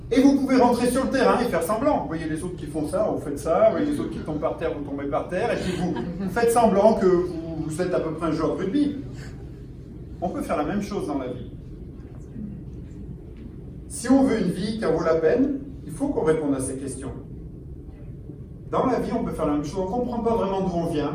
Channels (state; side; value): identical; both; correlation 1.00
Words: et vous pouvez rentrer sur le terrain et faire semblant. Vous voyez les autres qui font ça, vous faites ça, vous voyez les autres qui tombent par terre, vous tombez par terre, et puis vous faites semblant que vous êtes à peu près un joueur de rugby. On peut faire la même chose dans la vie. Si on veut une vie qui en vaut la peine, il faut qu'on réponde à ces questions. Dans la vie, on peut faire la même chose. On ne comprend pas vraiment d'où on